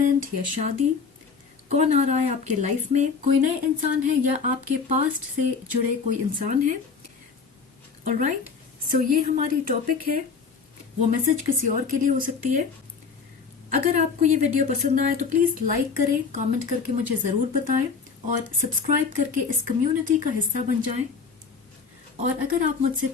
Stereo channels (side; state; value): right; quieter; 5.4 dB